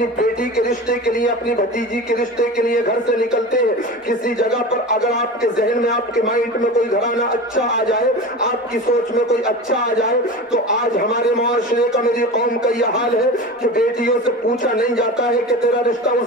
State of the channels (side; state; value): both; normal; correlation 0.31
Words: بیٹی کے رشتے کے لیے، اپنی بھتیجی کے رشتے کے لیے گھر سے نکلتے ہیں، کسی جگہ پر اگر آپ کے ذہن میں، آپ کے مائنڈ میں کوئی گھرانہ اچھا آ جائے، آپ کی سوچ میں کوئی اچھا آ جائے، تو آج ہمارے معاشرے کا، میری قوم کا یہ حال ہے کہ بیٹیوں سے پوچھا نہیں نہیں جاتا ہے کہ تیرا رشتہ